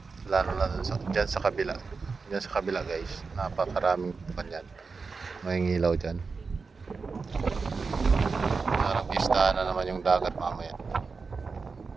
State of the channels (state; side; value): quieter; left; 4.6 dB